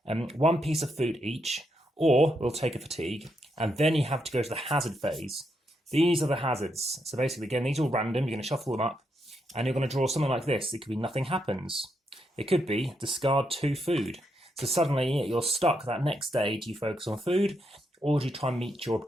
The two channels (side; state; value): both; normal; correlation 0.80